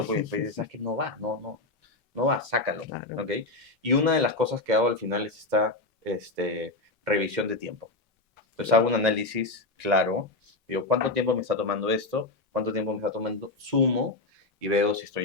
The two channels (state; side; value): quieter; right; 3.0 dB